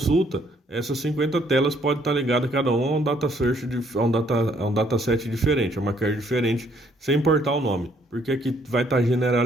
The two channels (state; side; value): normal; both; correlation 0.66